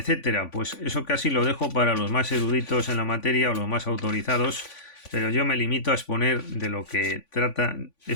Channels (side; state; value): right; late; 3.5 ms